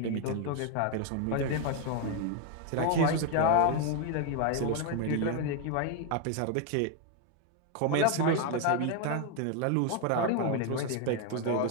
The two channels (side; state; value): both; different; correlation 0.01